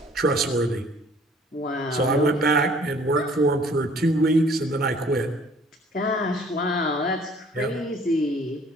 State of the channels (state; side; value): normal; both; correlation 0.55